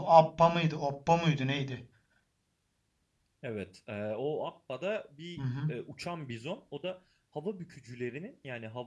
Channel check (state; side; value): identical; both; correlation 1.00